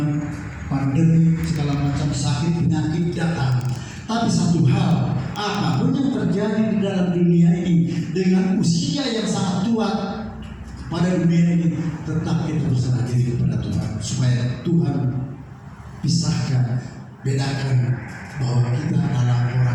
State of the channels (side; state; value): both; identical; correlation 1.00